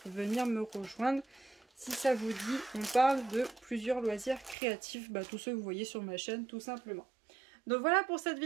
venir me rejoindre. Si ça vous dit, on parle de plusieurs loisirs créatifs, bah, tous ceux que vous voyez sur ma chaîne tout simplement. Donc voilà pour cette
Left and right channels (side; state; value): left; drops out; at 4.5 s